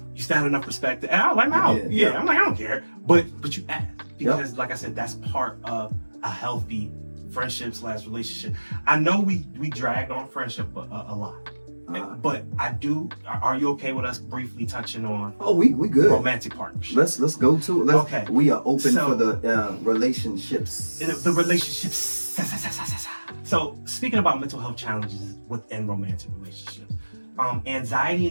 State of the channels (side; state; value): both; inverted; correlation -1.00